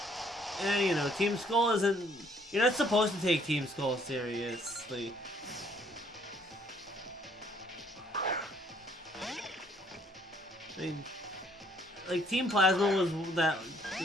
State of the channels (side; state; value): both; normal; correlation 0.64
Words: And you know, Team Skull isn't. You're not supposed to take Team Skull seriously. I mean, like Team Plasma was that